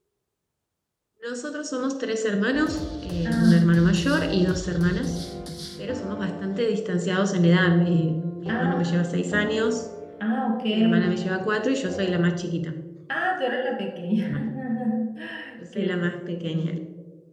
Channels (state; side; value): identical; both; correlation 1.00